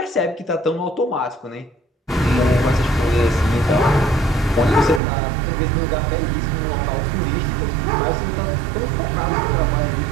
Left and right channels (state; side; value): drops out; left; at 5.0 s